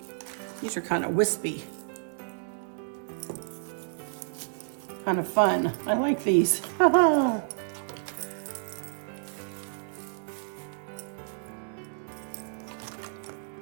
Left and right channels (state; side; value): silent; left; digital silence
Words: These are kind of wispy. Kind of fun. I like these.